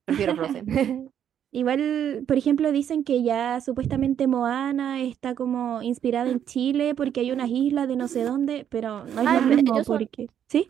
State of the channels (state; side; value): quieter; left; 9.4 dB